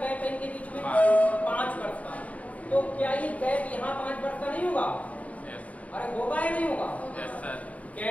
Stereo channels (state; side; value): late; right; 0.069 ms